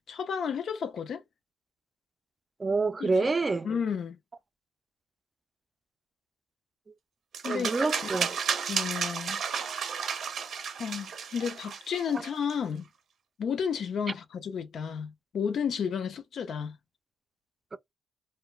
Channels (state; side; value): normal; both; correlation 0.77